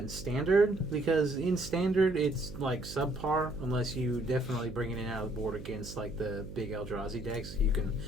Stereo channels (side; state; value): right; noise; hum, 12 dB below the sound